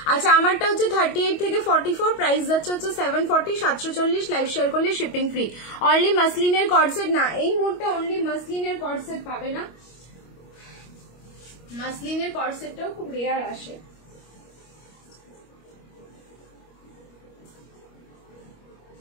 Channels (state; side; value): late; right; 25 ms